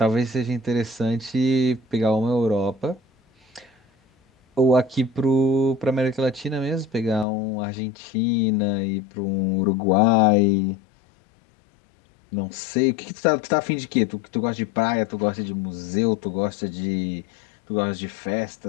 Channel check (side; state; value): right; drops out; at 7.2 s